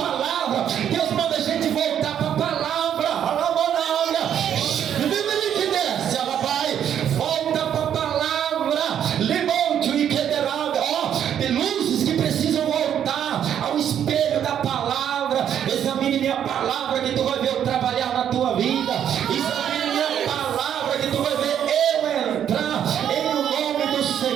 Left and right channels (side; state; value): left; quieter; 9.5 dB